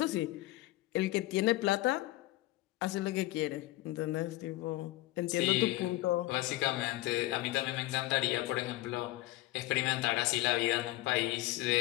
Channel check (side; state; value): right; quieter; 18.0 dB